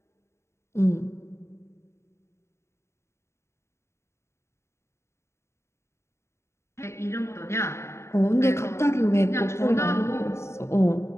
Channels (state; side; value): late; right; 0.13 ms